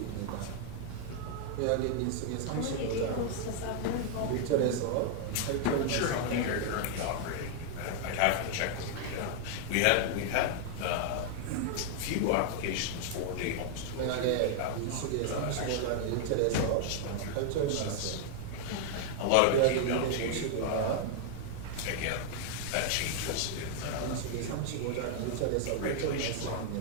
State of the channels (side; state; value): both; different; correlation 0.00